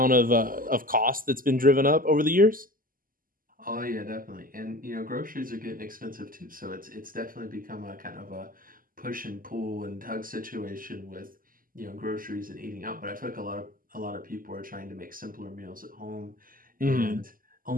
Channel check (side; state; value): left; late; 0.41 ms